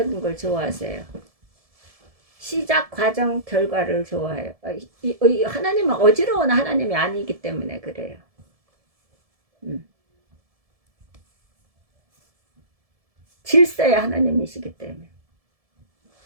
걸 좋아하세요. 시작, 과정, 결과를 좋아해요. 하나님은 어지러운 하나님이 아니기 때문에 그래요. 질서의 하나님이시기 때문에.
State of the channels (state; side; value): late; left; 1.7 ms